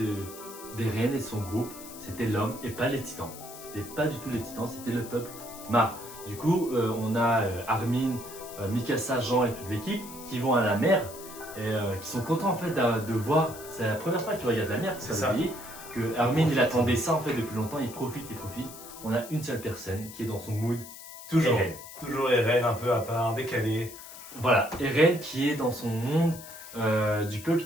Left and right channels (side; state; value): left; noise; hiss, 15 dB below the sound